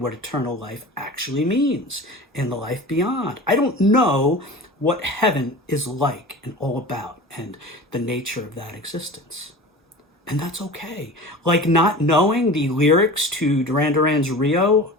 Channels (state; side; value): normal; both; correlation 0.35